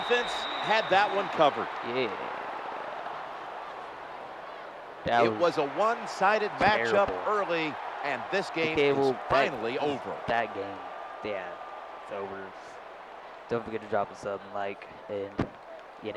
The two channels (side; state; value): both; identical; correlation 1.00